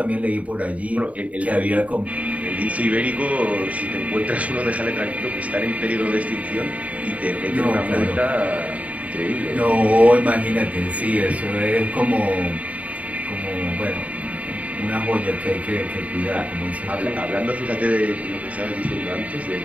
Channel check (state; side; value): late; left; 0.068 ms